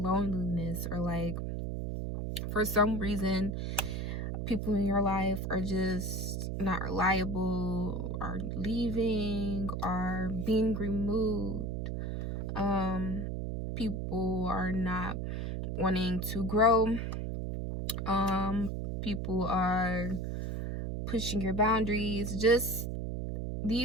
or like for some reason people in your life are just not reliable, are leaving, are being removed. People are not wanting to grow. People are pushing your boundaries. Just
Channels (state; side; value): noise; right; hum, 3 dB below the sound